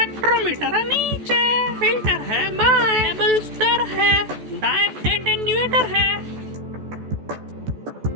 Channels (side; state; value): left; late; 14 ms